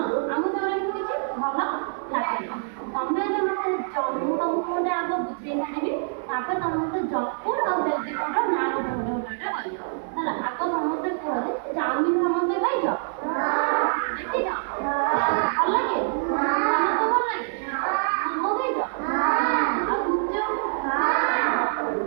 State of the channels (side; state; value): left; silent; 57 dB below the other